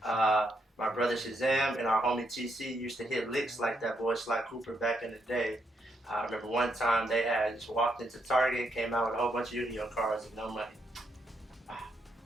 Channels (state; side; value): normal; both; correlation 0.77